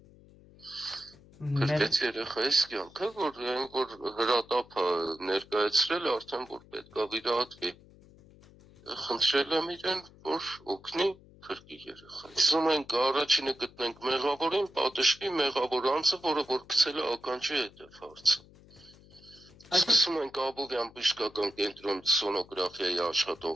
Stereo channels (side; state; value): left; noise; hum, 24 dB below the sound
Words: Փրկեց երեխայիս կյանքը, որ հրատապը ներկայացրել արդեն, որ պետք է վիրահատվի, խնդրել եմ իրեն, որ օգնի փրկի երեխային։ Ուզում ենք առաջինը գտնենք մեղավորին, պատժվի մեղավոր անձը, որը որ գցել է ականջի հետև հարցը։ Սկսում ենք Աբովյան բժշկական կենտրոն սոնոգրաֆիայի